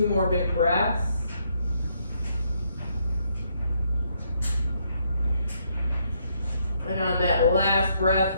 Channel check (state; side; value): inverted; both; correlation -0.73